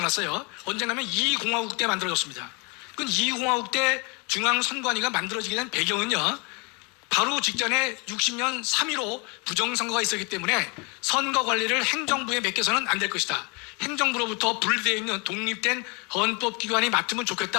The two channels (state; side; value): quieter; right; 31.2 dB